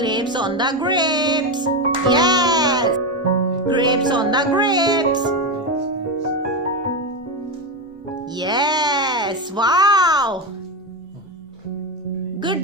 on the grapes. Yes. Grapes on the grapes. Yes. Wow. Good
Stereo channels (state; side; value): normal; both; correlation 0.13